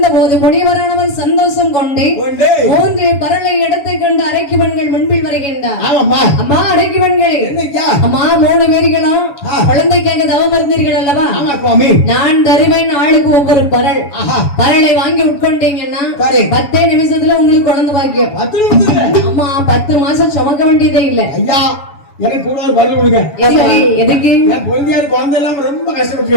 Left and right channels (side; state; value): right; late; 7.1 ms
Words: போது முனிவரானவர் சந்தோஷம் கொண்டு 3 பரலை எடுத்து கொண்டு அரைக்கு பெண்கள் முன்பில் வருகின்றார். அம்மா அரைக்கு பெண்களே, அம்மா 3 பேர்களும் குழந்தைக்காக தவம் இருந்தீர்கள் அல்லவா? நான் தருவேன் ஆளுக்கு ஒவ்வொரு பரல். பரலை வாங்கி உட்கொண்டீங்கன்னா 10 நிமிஷத்துல உங்களுக்கு குழந்தை பாக்கியம். அம்மா 10 மாசம் சுமக்க வேண்டியதே இல்ல. ஐயா எனக்கு கூட ஒரு பதில் கொடுங்க. எதுக்கு? என் குழந்தையார் குழந்தை எல்லாம் ரொம்ப கஷ்டப்பட்டு